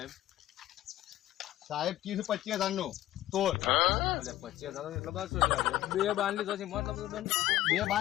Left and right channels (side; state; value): right; quieter; 14.6 dB